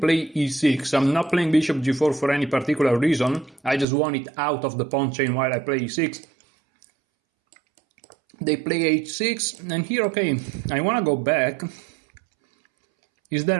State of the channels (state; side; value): drops out; left; at 3.9 s